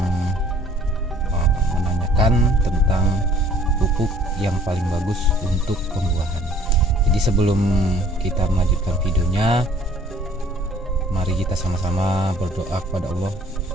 menanyakan tentang pupuk yang paling bagus untuk pembuahan. Jadi sebelum kita melanjutkan videonya, mari kita sama-sama berdoa kepada Allah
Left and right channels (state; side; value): normal; both; correlation 0.56